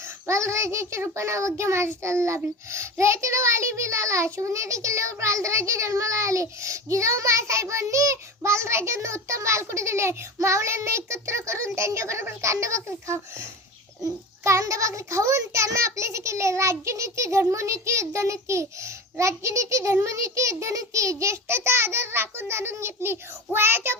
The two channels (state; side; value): normal; both; correlation 0.29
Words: बालराजाच्या रूपाने अवघ्या महाराष्ट्राला लाभलं. रयतेला वाली बिलाला, शिवनेरी किल्ल्यावर बालराजे जन्माला आले. जिजाऊ मासाहेबांनी बालराजांना उत्तम बालकुटी दिले. मावळ्यांना एकत्र करून त्यांच्याबरोबर कांदा भाकरी खाऊन त्यांना आपलेसे केले. राज्यनीती, धर्मनीती, युद्धनीती, राज्यनीती, धर्मनीती, युद्धनीती, ज्येष्ठाचा आदर राखून जाणून घेतली. वयाच्या